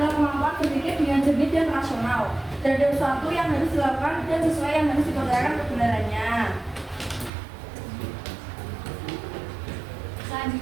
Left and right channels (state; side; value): drops out; left; at 7.3 s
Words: kemampuan berpikir dengan jernih dan rasional terhadap sesuatu yang harus dilakukan dan sesuai yang harus dipercayakan kebenarannya.